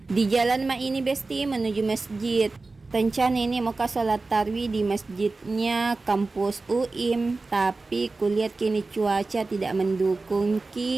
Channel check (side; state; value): left; quieter; 3.6 dB